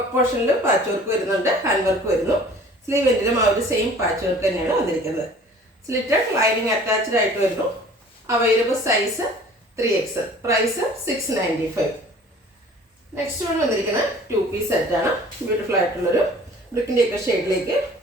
പോർഷനിൽ പാച്ച് വർക്ക് വരുന്നുണ്ട്, ഹാൻഡ് വർക്ക് വരുന്നു. സ്ലീവ് എൻഡിലും ആ ഒരു സെയിം പാച്ച് വർക്ക് തന്നെയാണ് വന്നിരിക്കുന്നത്. സ്ലിറ്റഡ്, ലൈനിങ് അറ്റാച്ച്ഡ് ആയിട്ട് വരുന്നു. Available size 3XL. Price 695. Next one വന്നിരിക്കുന്നത് 2 പീസ് സെറ്റാണ്. ബ്യൂട്ടിഫുൾ ആയിട്ടുള്ളൊരു ബ്രിക്കിൻ്റെ ഒക്കെ ഷെയ്ഡിലേക്ക്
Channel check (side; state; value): both; normal; correlation 0.48